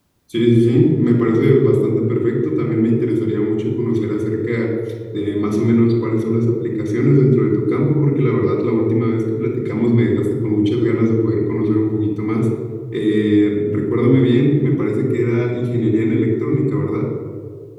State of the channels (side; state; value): both; identical; correlation 1.00